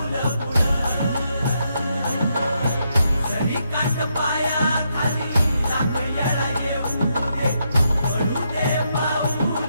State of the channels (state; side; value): inverted; both; correlation -0.79